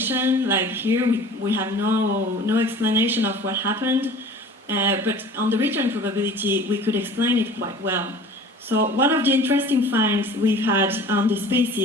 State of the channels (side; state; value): both; normal; correlation 0.44